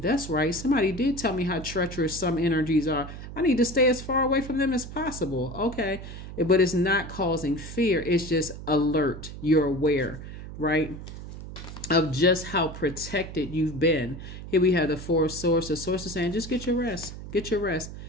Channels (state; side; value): noise; right; hum, 11 dB below the sound